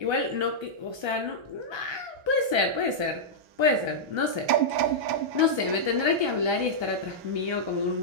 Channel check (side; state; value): left; late; 1.3 ms